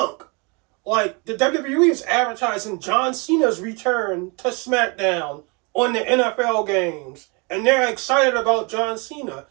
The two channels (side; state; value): left; quieter; 30.8 dB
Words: Like, the WWE is advertising John Cena's return to SmackDown on the NFL games. And they're excited about John Cena.